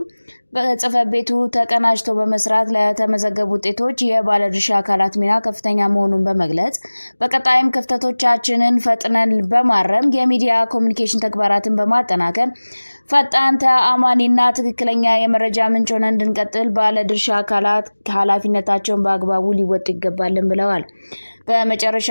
በጽሕፈት ቤቱ ተቀናጅቶ በመስራት ለተመዘገቡ ውጤቶች የባለድርሻ አካላት ሚና ከፍተኛ መሆኑን በመግለጽ በቀጣይም ክፍተቶቻችንን ፈጥነን በማረም የሚዲያ ኮሙኒኬሽን ተግባራትን በማጠናከር ፈጣን፣ ተአማኒና ትክክለኛ የመረጃ ምንጭ ሆነን እንድንቀጥል ባለድርሻ አካላት ኃላፊነታቸውን በአግባቡ ሊወጡ ይገባልን ብለዋል።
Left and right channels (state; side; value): inverted; both; correlation -1.00